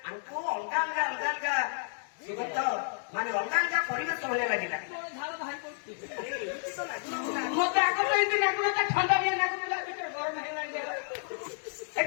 ଆମକୁ ଅଲଗା ଅଲଗା ଅଲଗା ଅଲଗା ସୁଗତ ମାନେ ଅଲଗା ଅଲଗା ପରିବେଶ ଭଳିଆ ଲାଗିଲା। ତୋର ଝାଳ ବାହାରି ପଡୁଛି ଆରେ ଏମିତି ତ ଲାଗୁନଥିଲା। ମତେ ଆଗ ଏମିତି ଲାଗୁନଥିଲା ଥଣ୍ଡାଳିଆ ଲାଗୁଥିଲା ଭିତରେ ଗରମ ହେଇଗଲାଣି ଦେହ।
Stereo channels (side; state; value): right; silent; digital silence